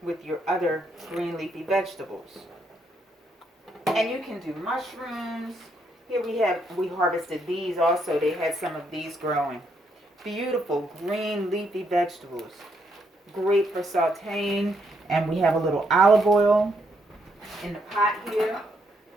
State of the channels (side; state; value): both; normal; correlation 0.75